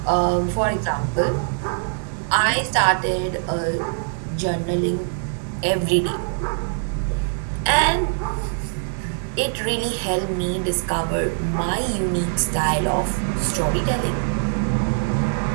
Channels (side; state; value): left; silent; digital silence